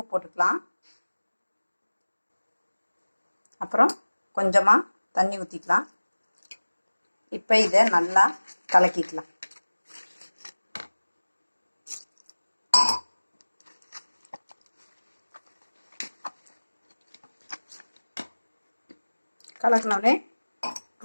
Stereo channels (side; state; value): both; inverted; correlation -1.00